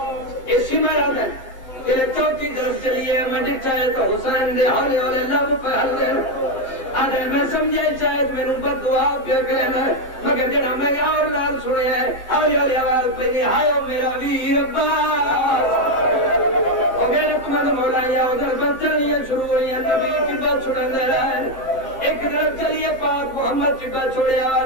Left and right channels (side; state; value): right; late; 7.7 ms